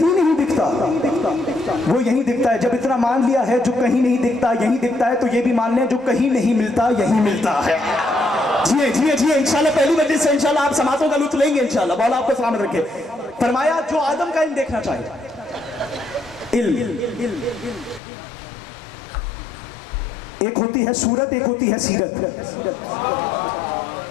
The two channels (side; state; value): right; drops out; at 18.0 s